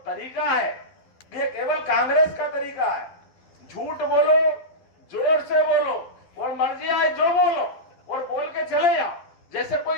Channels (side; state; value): right; late; 12 ms